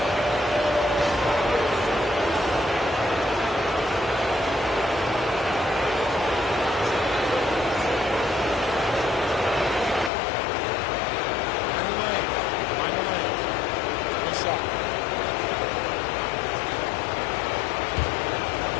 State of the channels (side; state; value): right; drops out; at 10.1 s